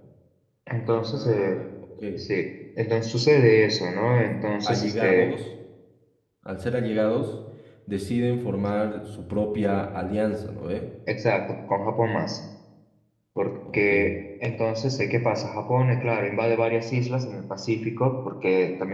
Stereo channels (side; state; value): both; identical; correlation 1.00